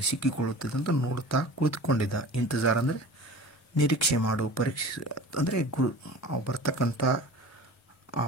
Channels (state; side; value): normal; both; correlation 0.38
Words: ಸಿಕ್ಕಿಕೊಳ್ಳುತ್ತದೆ ಅಂತ ನೋಡ್ತಾ ಕುಳಿತುಕೊಂಡಿದ್ದ। ಇಂತಜಾರ್ ಅಂದರೆ ನಿರೀಕ್ಷೆ ಮಾಡು, ಪರೀಕ್ಷೆ ಅಂದರೆ ಅವು ಬರ್ತಕ್ಕಂಥ